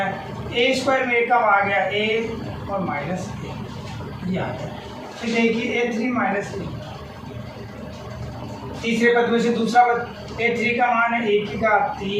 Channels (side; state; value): both; identical; correlation 1.00